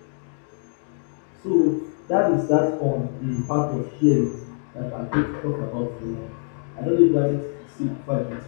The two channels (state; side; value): silent; right; 62 dB below the other